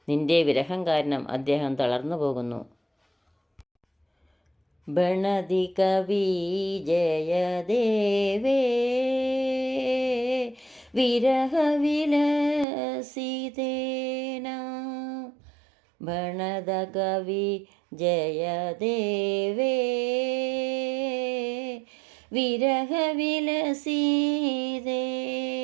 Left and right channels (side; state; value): left; drops out; at 12.7 s